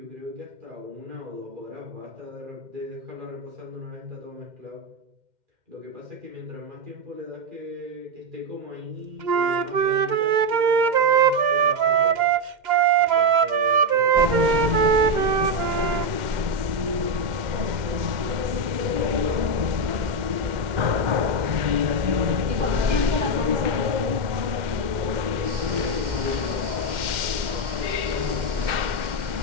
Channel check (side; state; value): left; late; 2.1 ms